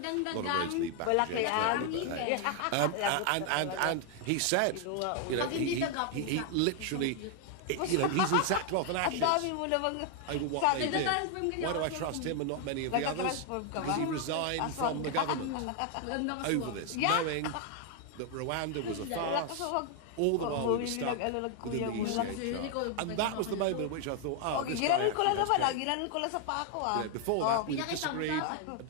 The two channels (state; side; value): different; both; correlation 0.00